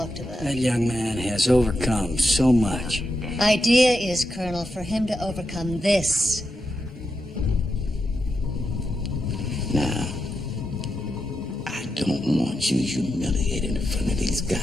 about. That young man has overcome so much. Idea is, Colonel, for him to overcome this. Now, I don't want you humiliated in front of these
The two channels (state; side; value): normal; both; correlation 0.87